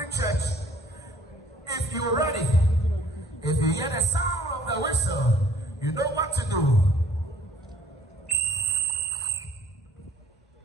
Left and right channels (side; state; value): both; normal; correlation 0.58